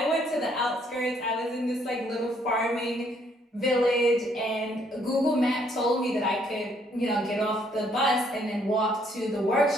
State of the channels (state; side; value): normal; both; correlation 0.67